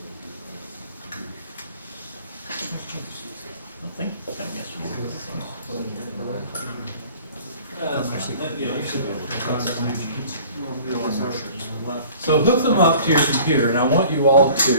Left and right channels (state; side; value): inverted; both; correlation -0.48